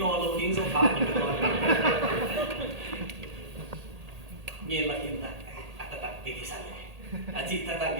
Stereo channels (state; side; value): late; left; 1.8 ms